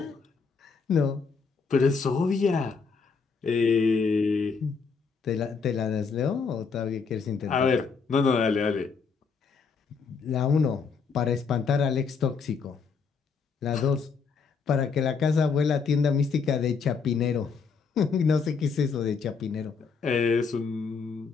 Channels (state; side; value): quieter; right; 5.4 dB